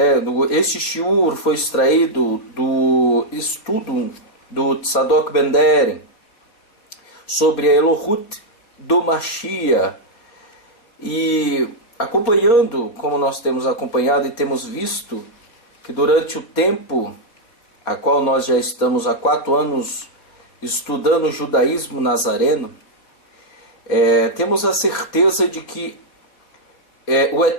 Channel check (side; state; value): right; late; 4.4 ms